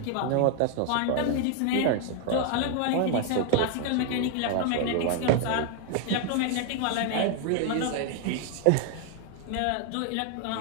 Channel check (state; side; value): different; both; correlation 0.00